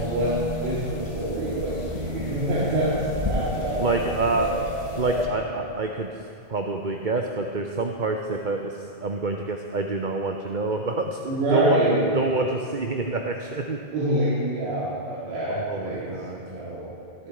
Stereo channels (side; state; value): left; late; 1.5 ms